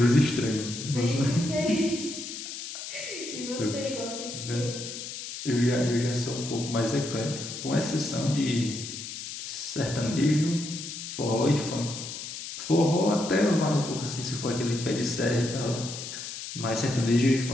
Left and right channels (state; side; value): noise; left; hiss, 9 dB below the sound